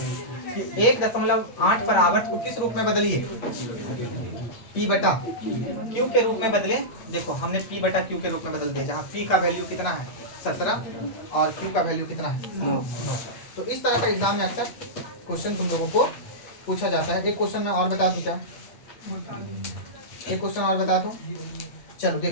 कि 1.8 पर आवर्त को किस रूप में बदलिए, p बटा q के रूप में बदले। देखो हमने p बटा q के रूप में बदल दिया, जहाँ p का वैल्यू कितना है 17 और q का वैल्यू कितना है 9। तो इस तरह का एग्जाम में अक्सर क्वेश्चन तुम लोगों को पूछा जाता है। एक क्वेश्चन मैं और बता दूं क्या, एक क्वेश्चन और बता दूं, चलो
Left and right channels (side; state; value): right; late; 8.4 ms